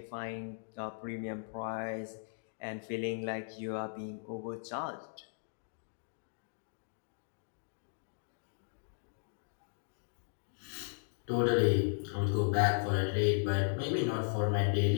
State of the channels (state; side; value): silent; right; digital silence